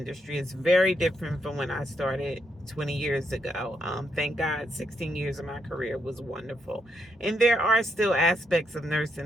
It's very different from when I started 20 years ago. Thank God, 16 years of my career was wonderful. And there are still aspects of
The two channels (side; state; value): both; normal; correlation 0.79